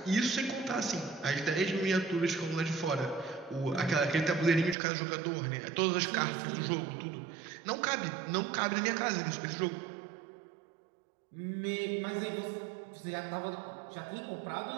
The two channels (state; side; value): drops out; left; at 4.8 s